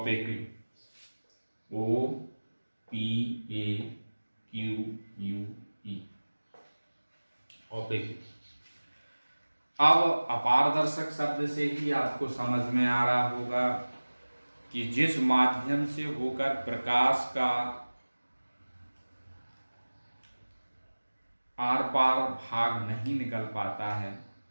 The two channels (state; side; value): inverted; both; correlation -1.00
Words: OPAQUE, ओपेक्यू। अब अपारदर्शक शब्द से ही आपको समझ में आ रहा होगा कि जिस माध्यम से होकर प्रकाश का आर पार भाग नहीं निकल पाता है,